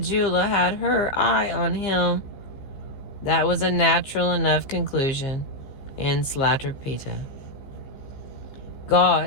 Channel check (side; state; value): right; late; 15 ms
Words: had her eye on him. That was a natural enough conclusion in Slatterpita.